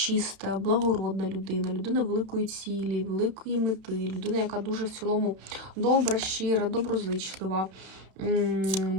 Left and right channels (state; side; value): late; left; 32 ms